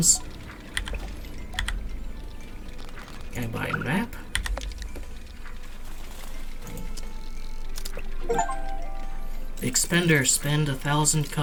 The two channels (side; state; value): both; identical; correlation 1.00